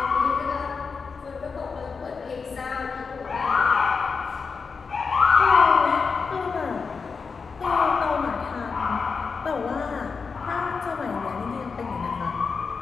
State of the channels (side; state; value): right; quieter; 5.1 dB